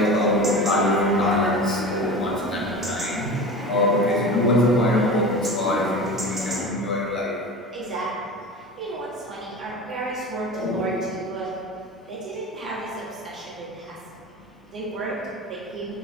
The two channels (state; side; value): normal; both; correlation 0.32